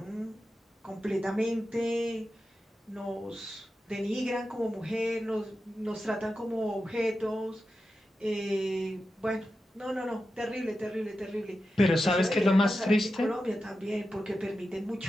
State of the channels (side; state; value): both; normal; correlation 0.91